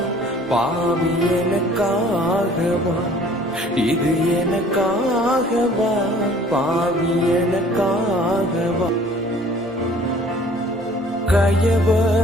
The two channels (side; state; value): both; normal; correlation 0.53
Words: பாவி எனக்காகவா, இது எனக்காகவா பாவி எனக்காகவா.